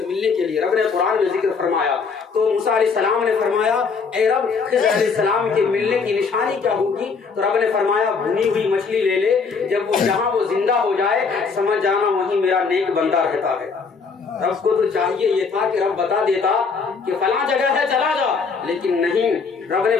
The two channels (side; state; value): right; quieter; 5.1 dB